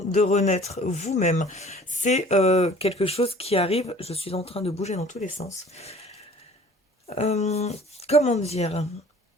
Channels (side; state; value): both; normal; correlation 0.49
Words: de renaître vous-même. C'est quelque chose qui arrive. Je suis en train de bouger dans tous les sens. Comment dire?